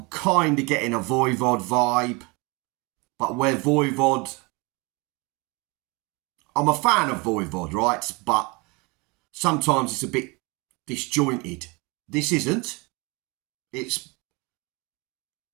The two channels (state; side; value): quieter; left; 27.4 dB